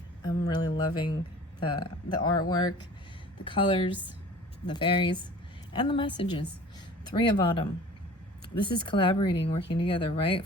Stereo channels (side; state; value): both; normal; correlation 0.44